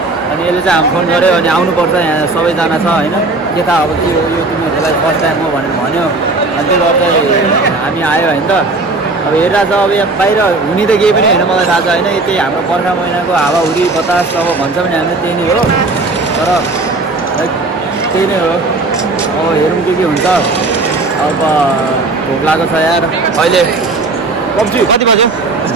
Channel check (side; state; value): left; quieter; 3.3 dB